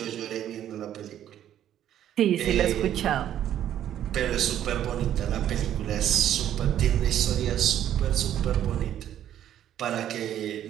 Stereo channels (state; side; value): quieter; left; 11.1 dB